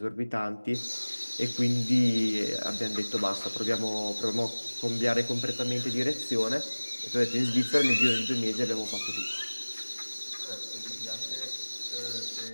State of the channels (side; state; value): both; inverted; correlation -1.00